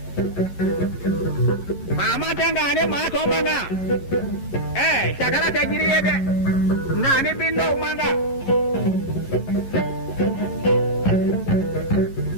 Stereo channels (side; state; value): right; late; 11 ms